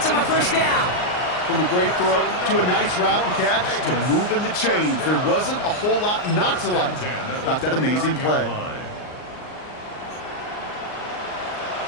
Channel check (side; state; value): right; late; 39 ms